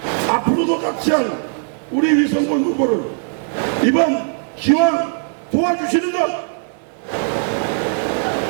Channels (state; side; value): silent; left; 66 dB below the other